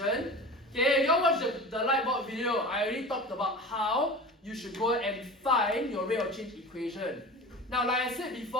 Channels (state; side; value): normal; both; correlation 0.34